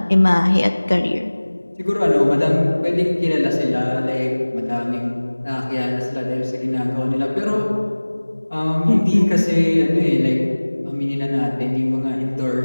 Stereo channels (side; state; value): both; inverted; correlation -1.00